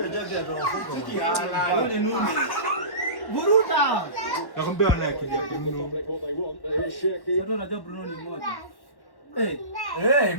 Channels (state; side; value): late; right; 1.1 ms